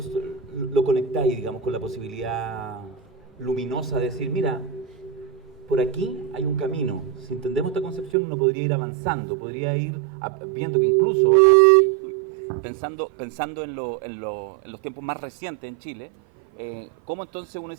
lo conectáis, digamos, con la posibilidad luminosa de decir, mira, por aquí hay un camino, si entendemos esta concepción uno podría ir avanzando, podría ir viendo que incluso, pensando en los tiempos más recientes en Chile, ¿cómo entonces uno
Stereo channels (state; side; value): drops out; left; at 8.2 s